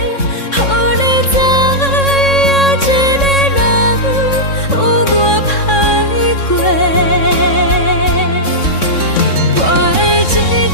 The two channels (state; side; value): late; right; 3.6 ms